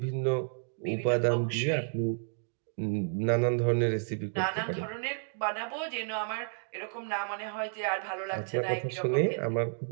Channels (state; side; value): silent; left; digital silence